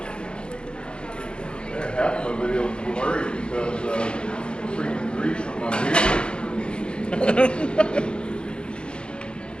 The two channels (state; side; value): late; right; 0.053 ms